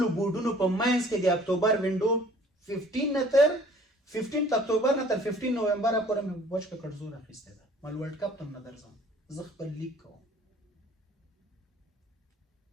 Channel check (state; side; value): normal; both; correlation 0.53